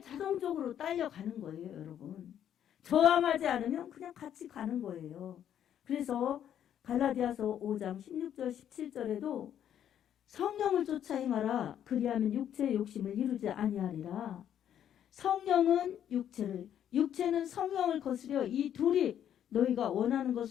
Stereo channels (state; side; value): quieter; right; 10.0 dB